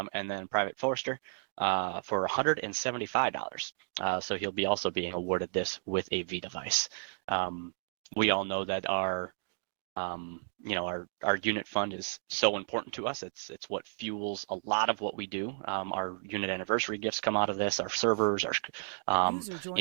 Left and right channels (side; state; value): left; silent; digital silence